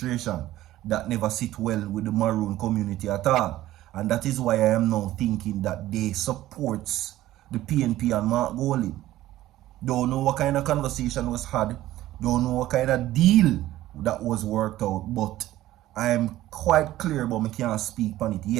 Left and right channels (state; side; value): quieter; left; 14.9 dB